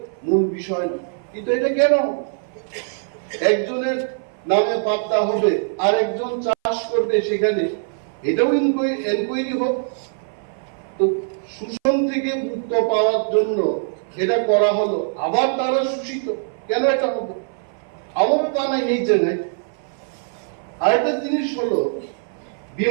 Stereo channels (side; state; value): left; silent; 59 dB below the other